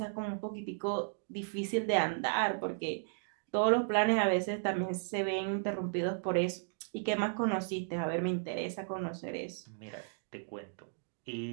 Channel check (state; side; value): silent; left; digital silence